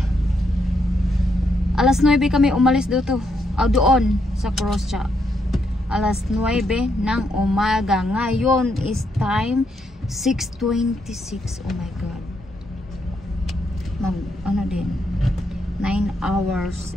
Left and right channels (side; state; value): both; normal; correlation 0.78